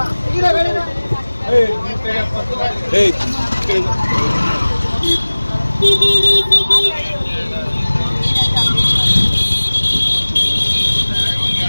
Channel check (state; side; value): inverted; both; correlation -1.00